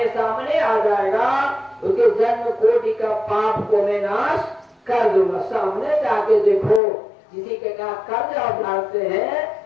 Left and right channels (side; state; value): right; drops out; at 6.8 s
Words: सामने आ जाएगा उसके जन्म कोटि का पाप को मैं नाश कर दूंगा। सामने जाके देखो, किसी के कहा कर्ज आप डालते हैं